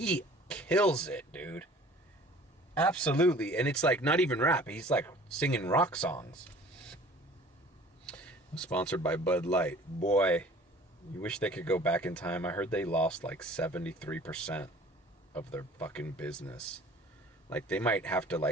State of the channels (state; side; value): normal; both; correlation 0.48